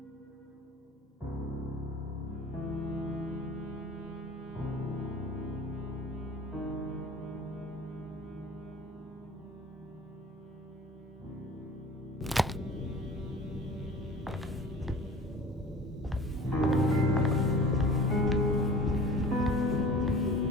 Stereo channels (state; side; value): normal; both; correlation 0.42